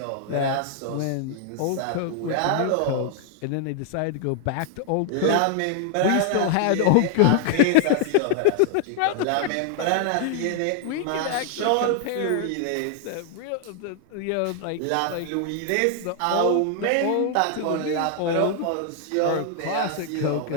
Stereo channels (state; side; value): different; both; correlation 0.00